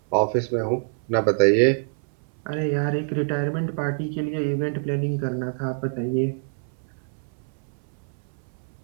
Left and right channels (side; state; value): left; silent; 61 dB below the other